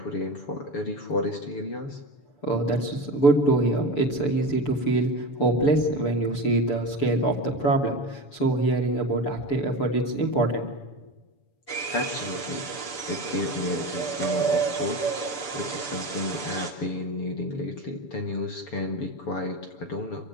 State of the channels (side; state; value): right; late; 6.9 ms